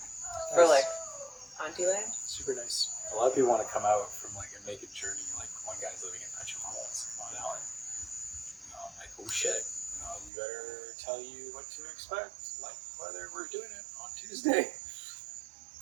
for Nice. like Auntie Land. Super nice. A lot of people want to come out from like a naked journey. Like one guy's living in Petropolis on Allen. I'm like, oh shit. We better tell you what to expect. Like whether we're doing it on Tuesday.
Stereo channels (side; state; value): left; drops out; at 10.3 s